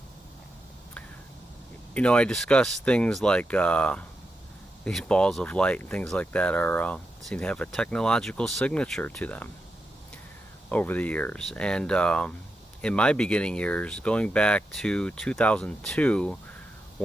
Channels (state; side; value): normal; both; correlation 0.86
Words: discuss things like these balls of light and things like that seem to have a technological signature to them over the years. And in my beginning years, going back to 2002,